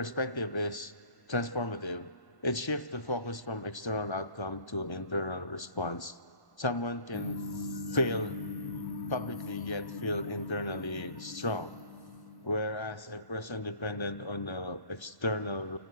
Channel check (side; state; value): right; late; 1.1 ms